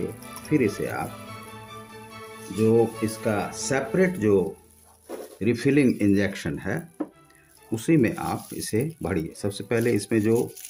फिर इसे आप जो इसका सेपरेट जो रिफिलिंग इंजेक्शन है उसी में आप इसे भरिए। सबसे पहले इसमें जो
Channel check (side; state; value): both; identical; correlation 1.00